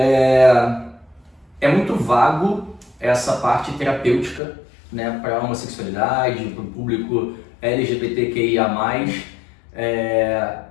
muito vago essa parte terapêutica, né, para a homossexualidade, para o público LGBTQIA+.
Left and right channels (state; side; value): drops out; right; at 4.4 s